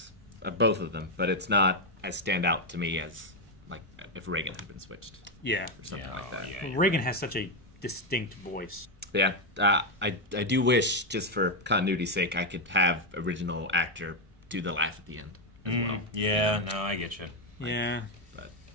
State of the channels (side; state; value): both; normal; correlation 0.04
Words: of both of them, but it's not as stand out to me as like if Reigen had been switched Yeah. or something like that. Yeah, Reigen has such a distinct voice. Yeah, I do wish, just for continuity's sake, I could have original actor do the laugh at the end as well. Yeah, no, I get you. Yeah. But